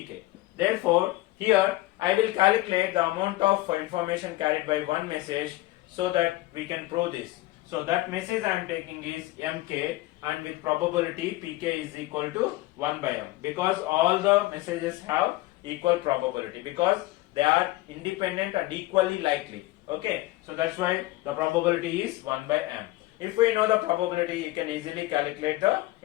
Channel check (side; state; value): right; quieter; 18.5 dB